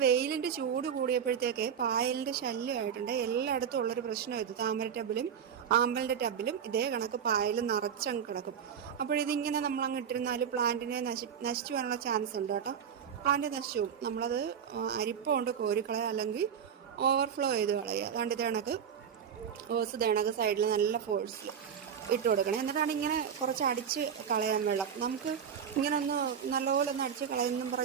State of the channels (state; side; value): quieter; left; 7.9 dB